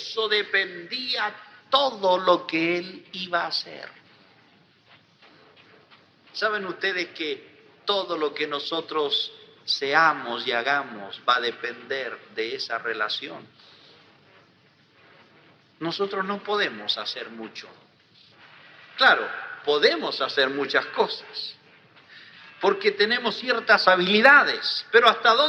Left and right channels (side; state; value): both; identical; correlation 1.00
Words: dependía todo lo que Él iba a hacer. ¿Saben ustedes que todo lo que nosotros seamos y hagamos va a depender de esa relación. Nosotros no podemos hacer mucho. Claro, podemos hacer muchas cosas, porque tenemos ciertas habilidades, pero ¿hasta